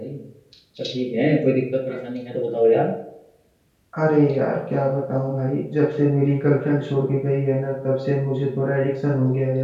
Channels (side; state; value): both; identical; correlation 1.00